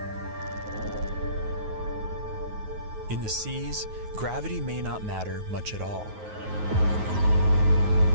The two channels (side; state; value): left; late; 9.4 ms